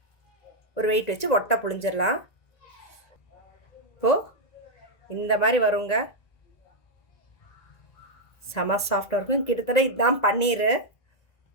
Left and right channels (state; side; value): late; right; 1.9 ms